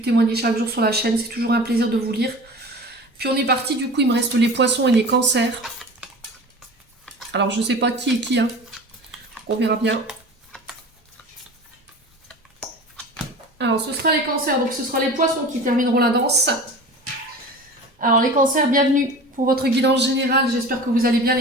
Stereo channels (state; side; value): normal; both; correlation 0.37